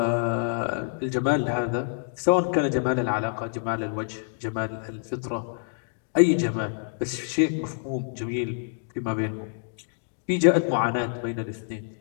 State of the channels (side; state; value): right; silent; digital silence